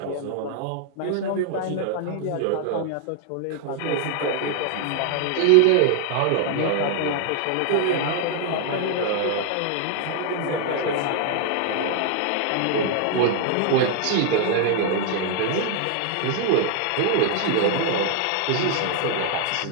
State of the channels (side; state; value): both; different; correlation 0.00